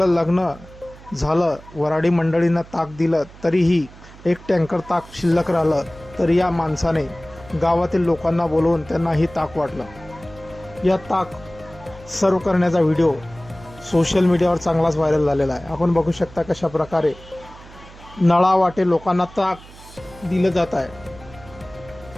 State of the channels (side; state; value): right; noise; hum, 20 dB below the sound